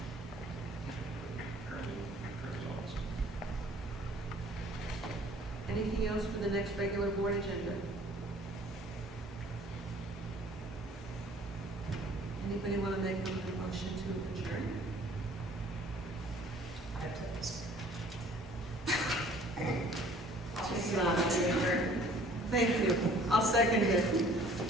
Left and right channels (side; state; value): both; normal; correlation 0.54